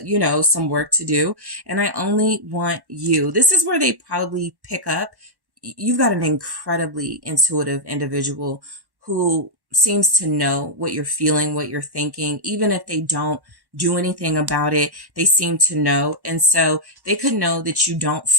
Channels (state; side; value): late; left; 1.1 ms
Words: some work to do. And I only want you. This is where they probably pick up. You've got an incredibly intuitive individual who seems to know what you're feeling, what you're thinking, even if they don't do anything about it, they seem to know. And so they could know that you don't